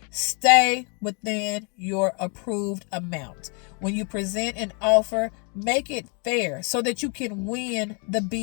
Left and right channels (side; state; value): right; quieter; 35.8 dB